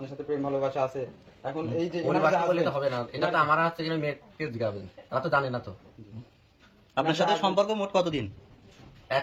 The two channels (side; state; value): both; identical; correlation 1.00